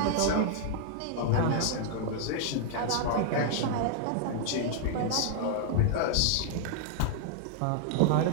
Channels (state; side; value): different; both; correlation -0.01